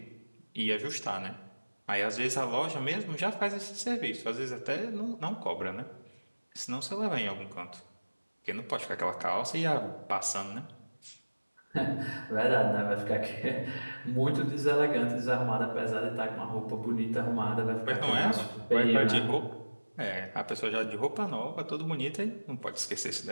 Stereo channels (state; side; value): inverted; both; correlation -1.00